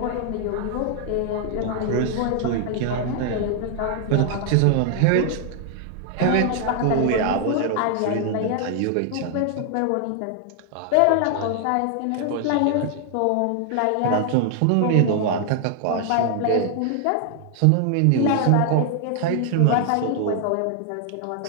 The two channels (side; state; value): both; different; correlation 0.00